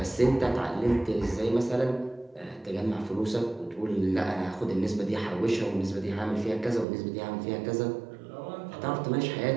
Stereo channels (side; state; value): left; drops out; at 6.9 s